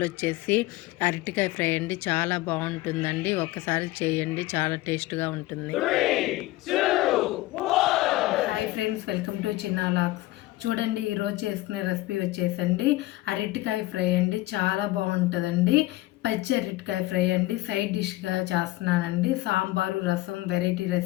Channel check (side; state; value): right; quieter; 18.2 dB